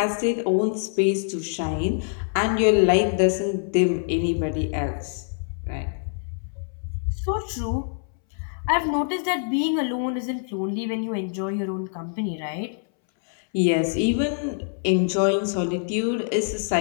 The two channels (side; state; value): right; silent; 62 dB below the other